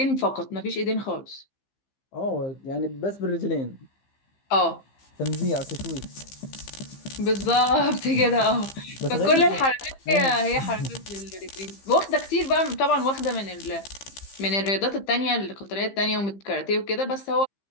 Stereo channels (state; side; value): late; right; 15 ms